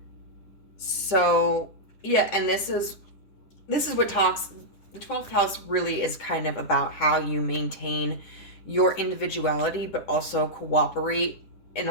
So yeah, and this is what talks. The 12th house really is kind of about how you maintain your individuality, but also cooperate in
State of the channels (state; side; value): late; right; 9.9 ms